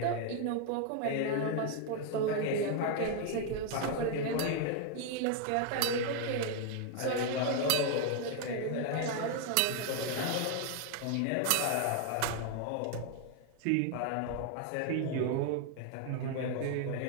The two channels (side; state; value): both; different; correlation 0.00